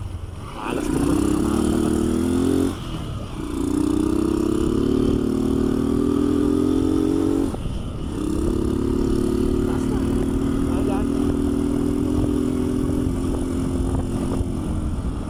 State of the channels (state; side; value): identical; both; correlation 1.00